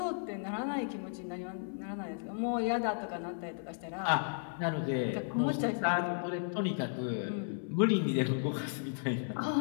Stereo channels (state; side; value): silent; right; 55 dB below the other